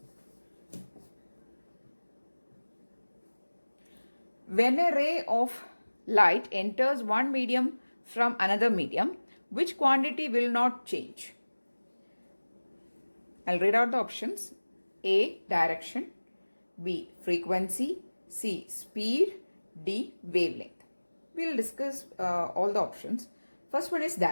When a ray of light enters one medium from another medium, which quantity will not change? I'll read out the options. A. Direction. B. Frequency. C. Speed. D. Wavelength. We'll discuss all the options. First one is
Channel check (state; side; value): inverted; both; correlation -1.00